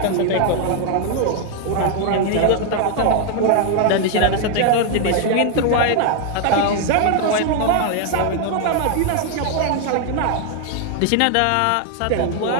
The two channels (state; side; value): different; both; correlation 0.00